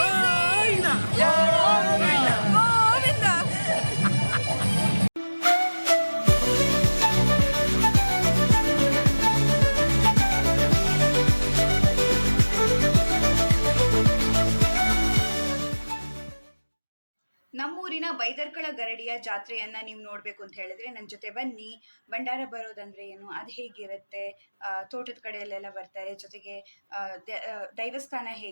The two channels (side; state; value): both; inverted; correlation -1.00